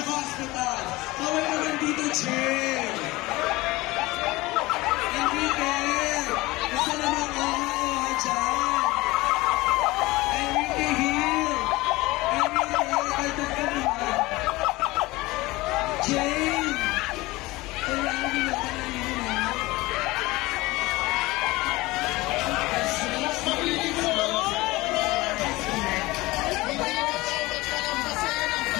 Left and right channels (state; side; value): quieter; right; 20.6 dB